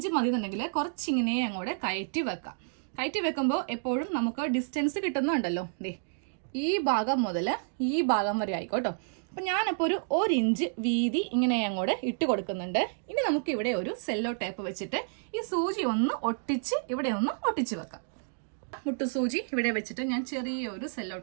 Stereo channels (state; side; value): silent; left; digital silence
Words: മതി എന്നുണ്ടെങ്കിൽ കുറച്ചിങ്ങനെ അങ്ങോട്ട് കയറ്റി വെക്കാം. കയറ്റി വെക്കുമ്പോൾ എപ്പോഴും നമുക്ക് ഡിസ്റ്റൻസ് കിട്ടുന്നുണ്ടല്ലോ. ഈ ഭാഗം മുതൽ ഈ ഭാഗം വരെ ആയിക്കോട്ടോ. അപ്പൊ ഞാനിപ്പോ ഒരു 1 ഇഞ്ച് വീതി ഇങ്ങനെ അങ്ങോട്ട് ഇട്ട് കൊടുക്കുന്നുണ്ട്. ഇനി നമുക്ക് ഇവിടെ ഒരു സെല്ലോ ടേപ്പ് വെച്ചിട്ട് ഈ സൂചി ഒന്ന് ഒട്ടിച്ച് ഇവിടെ ഒന്ന് ഒട്ടിച്ച് വെക്കാം. മുട്ടുസൂചി ഇവിടെ വെച്ചിട്ട് ഞാൻ ചെറിയൊരു സെല്ലോ